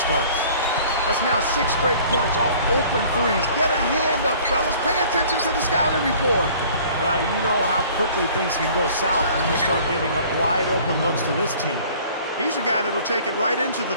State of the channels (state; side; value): inverted; both; correlation -0.51